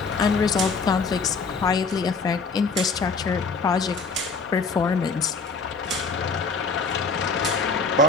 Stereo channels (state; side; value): quieter; right; 4.4 dB